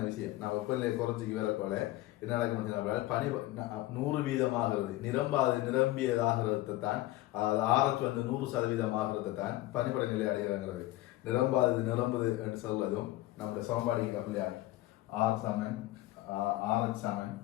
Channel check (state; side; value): quieter; right; 17.0 dB